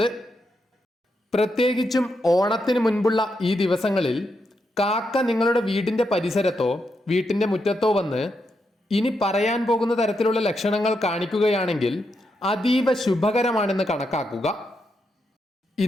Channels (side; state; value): both; normal; correlation 0.83